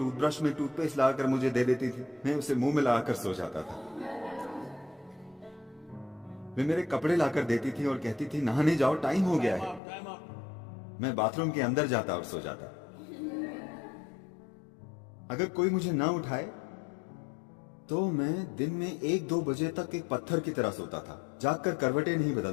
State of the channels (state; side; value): drops out; right; at 9.8 s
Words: में टूथपेस्ट लाकर मुझे दे देती थी। मैं उसे मुंह में लगाकर सो जाता था। वे मेरे कपड़े लाकर देती थी और कहती थी, नहाने जाओ, टाइम हो गया है। मैं बाथरूम के अंदर जाता और सो जाता। अगर कोई मुझे ना उठाए तो मैं दिन में 1-2 बजे तक एक पत्थर की तरह सोता था। जागकर करवटें नहीं